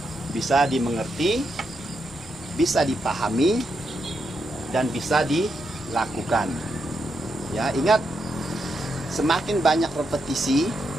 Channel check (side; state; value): both; normal; correlation 0.82